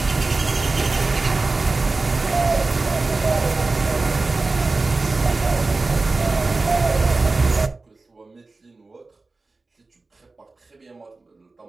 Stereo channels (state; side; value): quieter; left; 3.5 dB